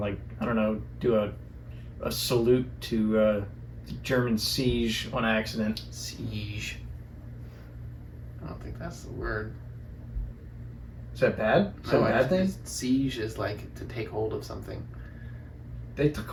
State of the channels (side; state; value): both; identical; correlation 1.00